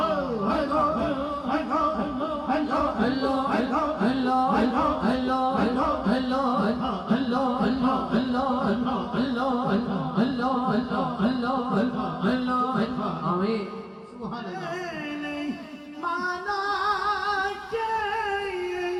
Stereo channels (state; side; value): identical; both; correlation 1.00